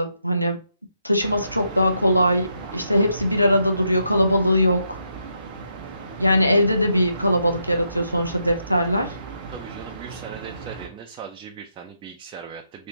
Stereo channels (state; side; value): inverted; both; correlation -0.79